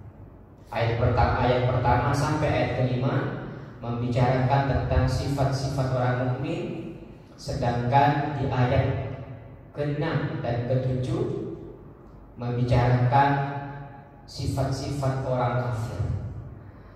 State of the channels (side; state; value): both; identical; correlation 1.00